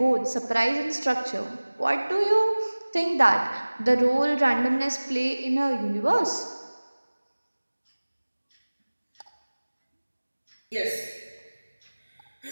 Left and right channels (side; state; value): both; inverted; correlation -1.00